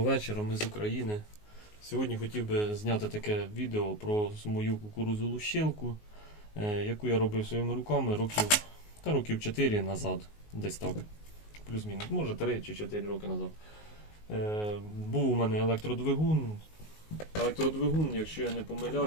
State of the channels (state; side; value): late; right; 19 ms